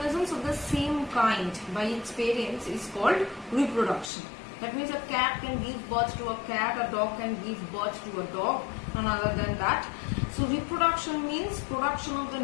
of the same kind by its parents is called reproduction. That means a cat can give birth to a cat, a dog can give birth to a dog, none other than that. So reproduction means production of the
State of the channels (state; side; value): drops out; right; at 4.1 s